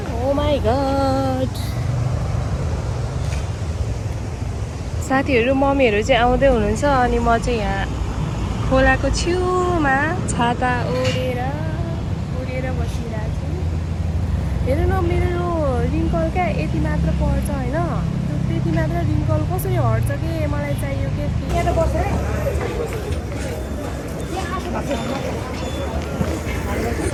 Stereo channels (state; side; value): identical; both; correlation 1.00